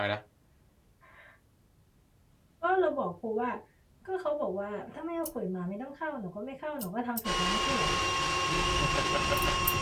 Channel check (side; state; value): both; identical; correlation 1.00